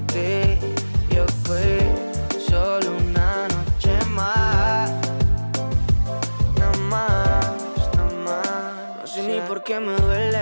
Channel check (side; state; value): both; inverted; correlation -1.00